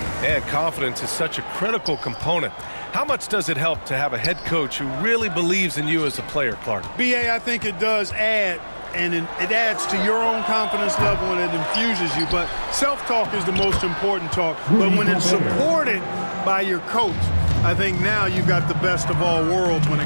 And confidence is such a critical component. How much does it help to have a head coach who really believes in you as a player, Clark? BA, I think it does add, and it adds to your own confidence level and it infuses you. But self-talk is the most important talk. But when it's supported by your coach, I think now you've got the best of all worlds when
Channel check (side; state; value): both; inverted; correlation -1.00